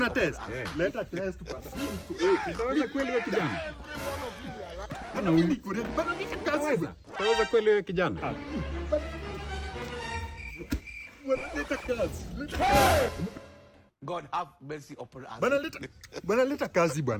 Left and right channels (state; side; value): identical; both; correlation 1.00